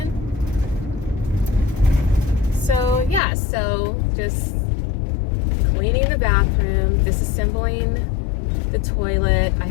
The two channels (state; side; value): drops out; right; at 3.2 s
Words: So yeah, so just cleaning the bathroom, disassembling the toilet. I